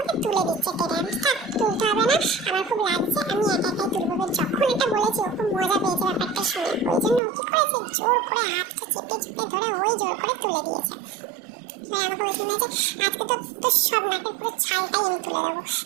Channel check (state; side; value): drops out; left; at 7.2 s